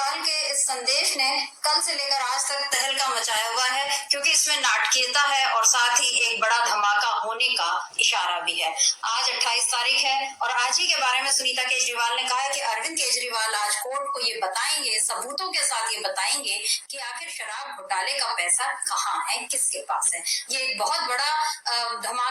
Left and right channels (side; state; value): both; identical; correlation 1.00